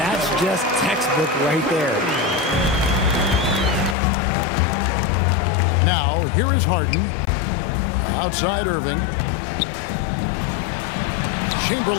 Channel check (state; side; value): drops out; right; at 4.0 s